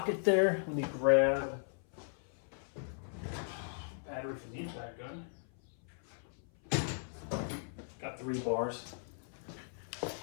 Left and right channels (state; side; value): silent; right; 53 dB below the other